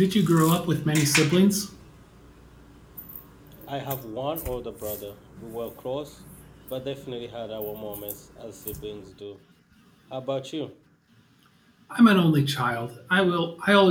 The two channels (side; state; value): both; identical; correlation 1.00